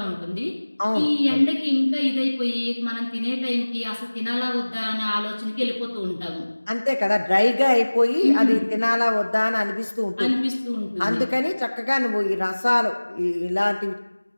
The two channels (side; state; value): both; inverted; correlation -1.00